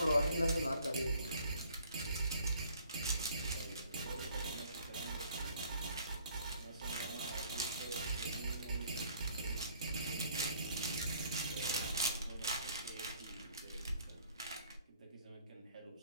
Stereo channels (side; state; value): both; inverted; correlation -0.59